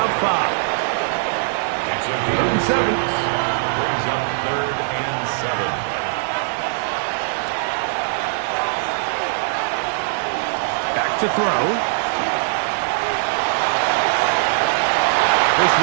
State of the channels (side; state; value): left; silent; digital silence